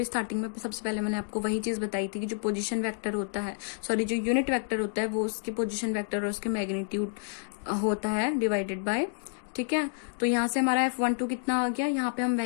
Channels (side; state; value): right; silent; digital silence